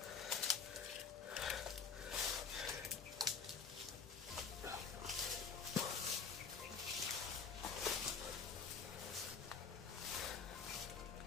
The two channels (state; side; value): quieter; right; 5.8 dB